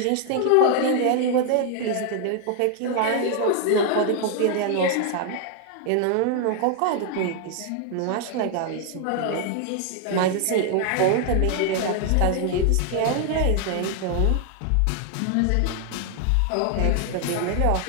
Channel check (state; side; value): different; both; correlation 0.00